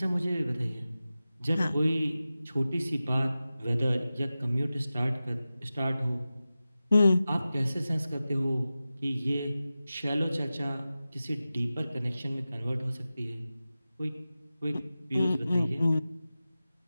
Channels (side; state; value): both; inverted; correlation -0.95